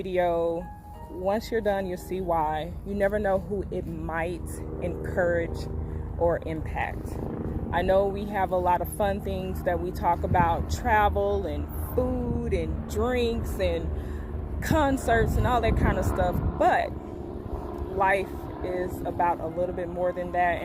Once you're done, you'll see why. You never know who it might encourage or impact. I know we have a lot of fun things that we talk about, travel and food and drinks and concerts and all that kind of stuff, but life is about a little bit more than that,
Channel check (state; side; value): identical; both; correlation 1.00